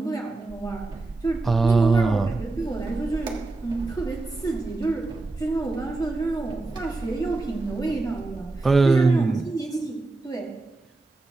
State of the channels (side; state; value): left; quieter; 3.3 dB